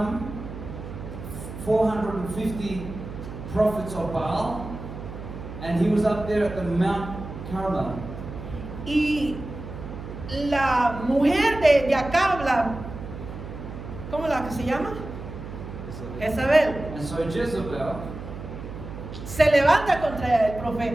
450 prophets of Baal, and he was up there at the Mount Carmel. Y la mujer de Acab, ¿cómo la que se llama? Jezabel, And so Jezebel se levanta contra el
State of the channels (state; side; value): noise; right; hum, 11 dB below the sound